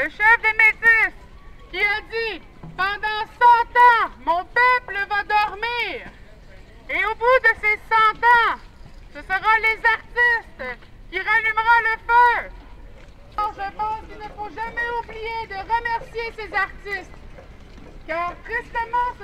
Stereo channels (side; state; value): both; identical; correlation 1.00